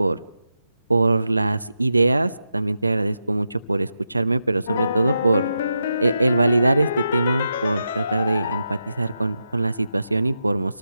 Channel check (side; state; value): both; inverted; correlation -0.87